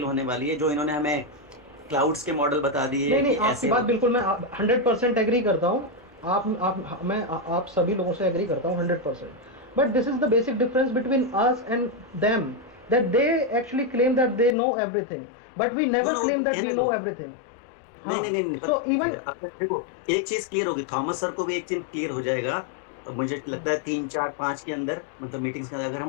होने वाली है जो इन्होंने हमें क्लाउड्स के मॉडल बता दिए. नहीं, आपकी बात बिल्कुल मैं 100% एग्री करता हूँ. आप सभी लोगों से एग्री करता हूँ 100%. But this is the basic difference between us and them, that they actually claim that they know everything, but we never No, claim that we know everything. नहीं. So even देखो एक चीज क्लियर होगी, Thomas sir को भी एक चीज clear हो जाएगा. और मुझे लगता है 3, 4, 5 के अंदर मतलब मीटिंग्स के अंदर अगर हम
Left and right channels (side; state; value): right; drops out; at 14.6 s